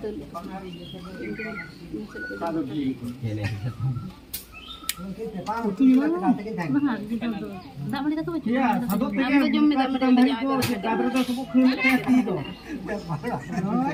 Mahal gitu tu. Tak boleh kata macam. Ya, satu tiga. Aku jom minta Itu kadang tu sebut kena itu.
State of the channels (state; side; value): identical; both; correlation 1.00